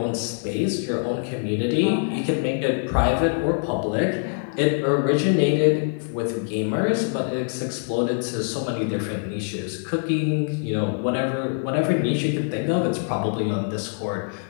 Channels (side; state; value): right; silent; 56 dB below the other